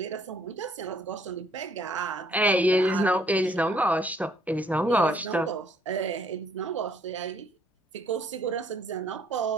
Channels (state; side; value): normal; both; correlation 0.63